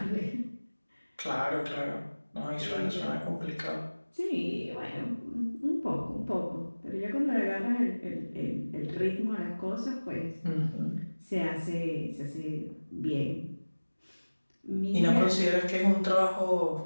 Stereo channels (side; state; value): both; inverted; correlation -1.00